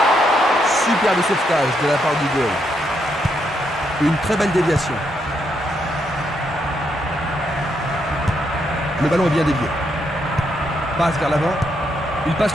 Superbe sauvetage de la part du goal. Une très belle déviation. Le ballon est bien dévié. Passe vers l'avant. Il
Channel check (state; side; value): normal; both; correlation 0.78